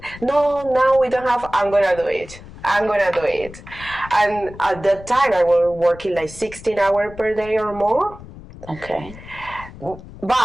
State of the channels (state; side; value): noise; left; rumble, 17 dB below the sound